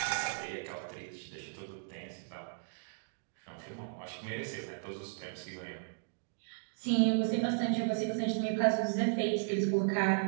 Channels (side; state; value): left; silent; digital silence